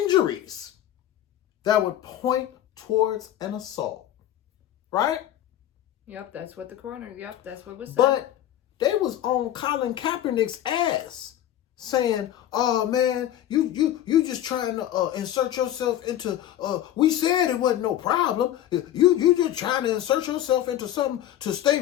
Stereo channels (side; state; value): right; quieter; 12.0 dB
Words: that would point towards an assault. Right? Yep, that's what the coroner, that's what was said. But they was on Colin Kaepernick's ass saying, "Oh man, you just trying to insert yourself into we said it wasn't no problem. You just trying to insert yourself into something to